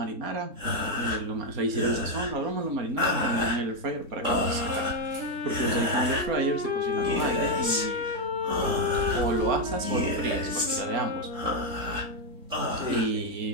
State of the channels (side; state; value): left; late; 3.7 ms